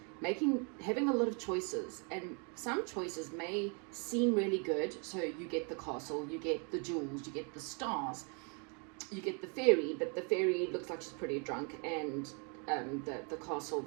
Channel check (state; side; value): quieter; left; 36.3 dB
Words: having a lot of choices, and some choices may seem really good. So you get the castle, you get the jewels, you get the stars, you get the fairy, but the fairy looks like she's pretty drunk, and the castle,